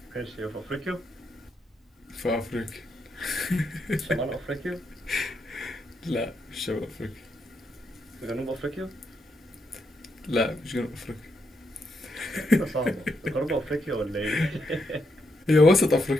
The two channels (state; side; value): normal; both; correlation 0.80